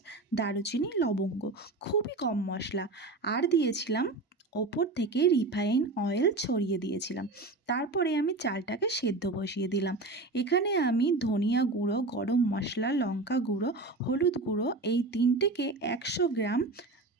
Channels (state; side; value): quieter; left; 3.2 dB